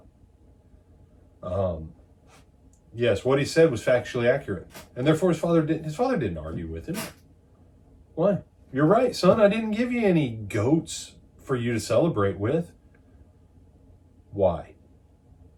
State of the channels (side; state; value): both; identical; correlation 1.00